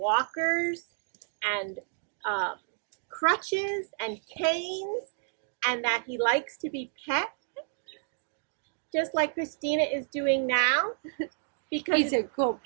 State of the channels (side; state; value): left; silent; digital silence